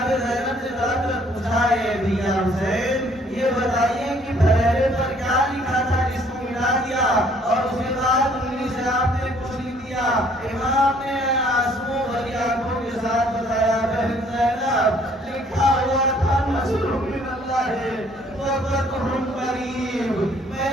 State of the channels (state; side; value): normal; both; correlation 0.61